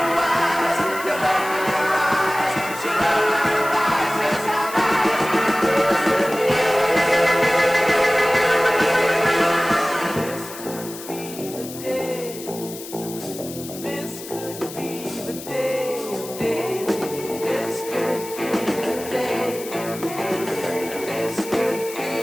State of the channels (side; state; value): left; noise; hiss, 13 dB below the sound